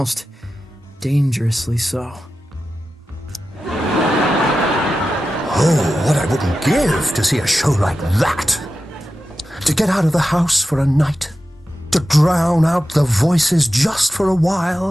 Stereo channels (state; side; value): normal; both; correlation 0.92